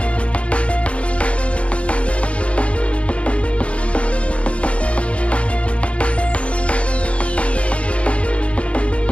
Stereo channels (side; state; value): right; late; 0.062 ms